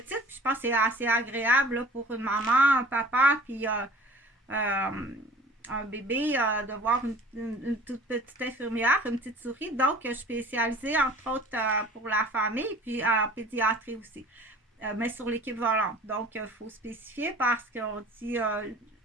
puis je pense que c'est assez agréable là, pour une maman, un papa, puis un bébé, de voir une toute petite infirmière, une petite souris. Donc, je suis spécialisée, entre autres, pour la famille, puis en pédiatrie aussi. Mais sur l'équipe volante. Donc, il faut spécifier parce qu'on dit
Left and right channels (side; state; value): both; normal; correlation 0.47